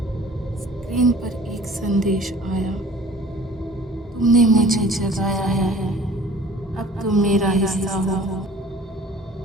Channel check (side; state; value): both; normal; correlation 0.48